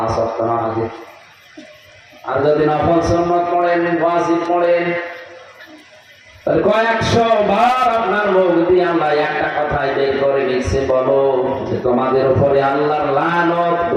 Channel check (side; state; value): both; identical; correlation 1.00